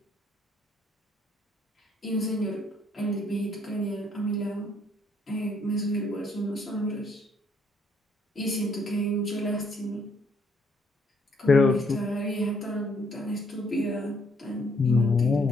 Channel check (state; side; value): normal; both; correlation 0.68